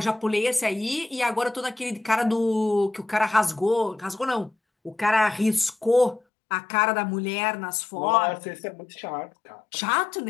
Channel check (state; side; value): drops out; right; at 6.2 s